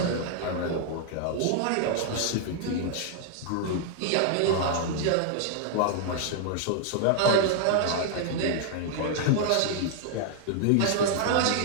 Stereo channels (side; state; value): both; different; correlation -0.01